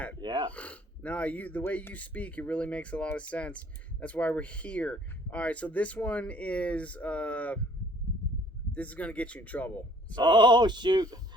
Yeah. No, the way you speak, it really makes a lot of sense. That's why we're here. All right, so this one is this is gonna get you in trouble. So, oh shoot.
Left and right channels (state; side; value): normal; both; correlation 0.58